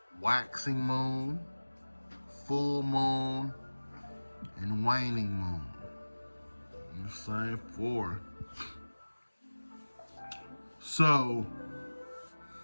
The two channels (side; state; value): both; inverted; correlation -1.00